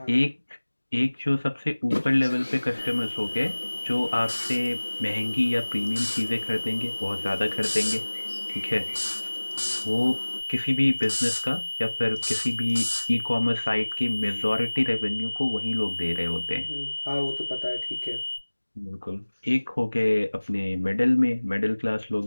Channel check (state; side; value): inverted; both; correlation -1.00